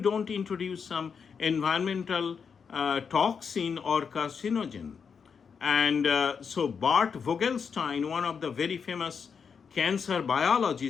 introduce some environmental toxin or carcinogen. And so Bart Vogelstein, one of the very famous cancer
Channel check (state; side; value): quieter; right; 6.2 dB